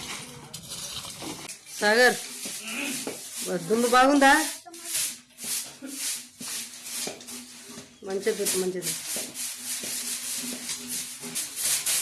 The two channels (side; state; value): both; identical; correlation 1.00